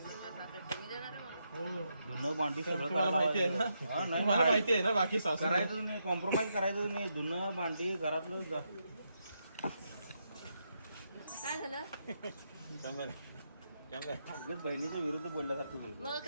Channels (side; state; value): both; inverted; correlation -0.82